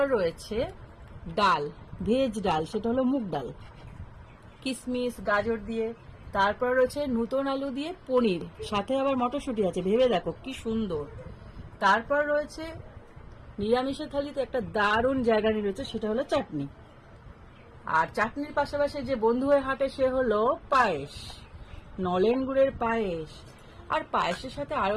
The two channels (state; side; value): identical; both; correlation 1.00